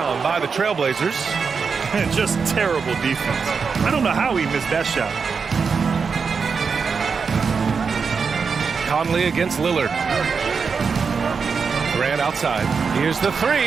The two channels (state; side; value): quieter; left; 5.5 dB